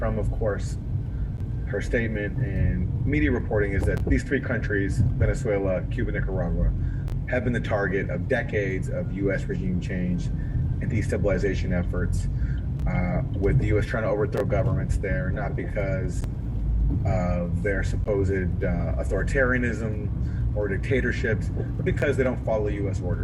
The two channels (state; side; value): identical; both; correlation 1.00